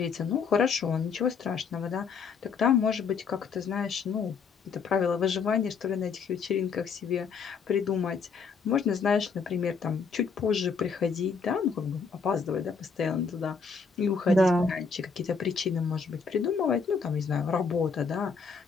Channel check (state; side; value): quieter; right; 5.4 dB